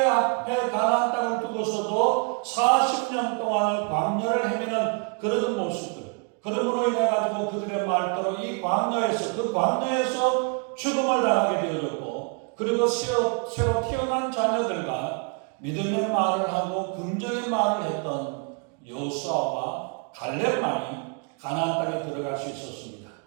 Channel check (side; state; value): left; quieter; 36.8 dB